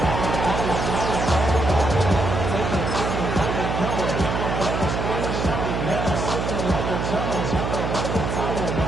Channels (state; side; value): noise; right; hum, 2 dB below the sound